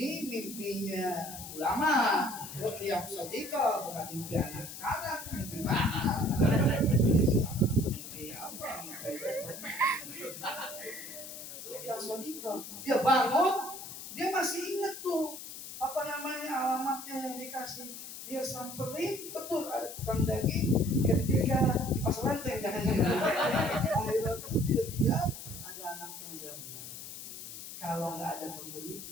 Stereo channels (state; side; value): noise; left; hiss, 11 dB below the sound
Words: mimpinya ulama, Ruqyah Shadiqah, bukan mimpi anak sekarang. Mimpi mana? Mimpi apa? Ruqyah Shadiqah. Dia bangun, dia masih ingat tuh apa namanya alamatnya yang dikasih. Dia samperin, betul ada tukang daging. Ketika di pasar lanteng jangan-jangan. Akhirnya tuh dia lihat ada anak muda. Kalau nggak ada pembeli